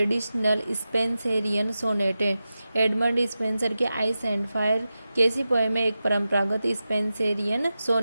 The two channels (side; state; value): both; inverted; correlation -0.93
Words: स्पेंसेरियन सोनेट है। एडमंड स्पेंसर के आइस एंड फायर कैसी पोएम में एक परंपरागत स्पेंसेरियन